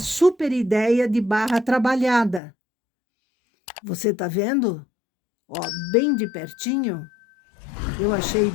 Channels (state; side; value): drops out; right; at 2.4 s